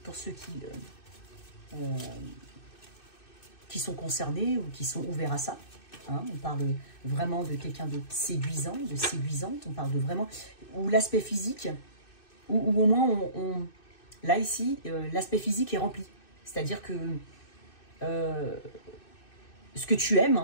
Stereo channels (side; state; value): right; late; 2.6 ms